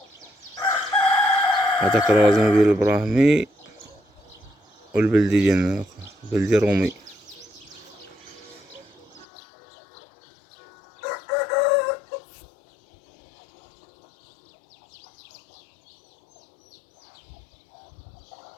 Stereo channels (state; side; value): drops out; right; at 9.2 s